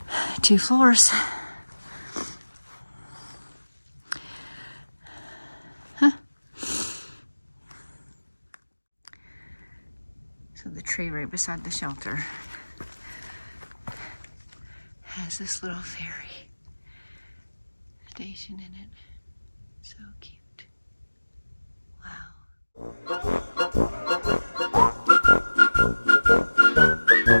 2 floors. Huh. So the tree right beside the shelter has this little ferry station in it. So cute. Wow.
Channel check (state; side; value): inverted; both; correlation -1.00